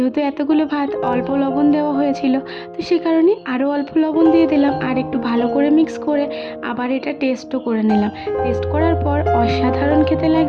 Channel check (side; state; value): both; identical; correlation 1.00